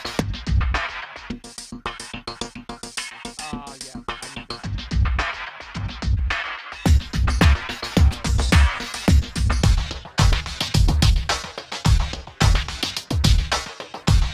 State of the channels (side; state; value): both; identical; correlation 1.00